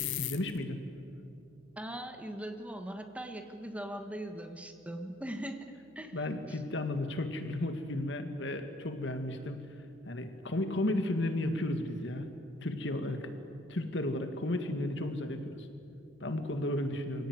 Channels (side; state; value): right; noise; hum, 30 dB below the sound